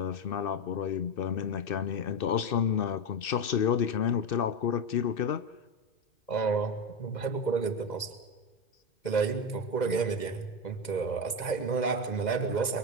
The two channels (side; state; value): right; late; 2.0 ms